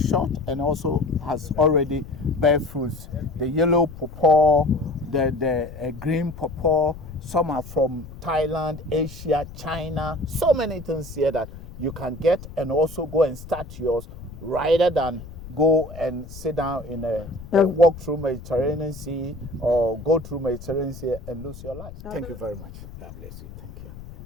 and also has already bear fruits. The yellow pawpaw, the green pawpaw, some are from Thailand, Asia, China, so many things here that you can get and also go and start yours rather than go and sit down in walk through Mediterranean Sea or go through Mediterranean Sea and lose your life. Thank you very much. God bless you. Thank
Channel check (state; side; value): noise; left; rumble, 14 dB below the sound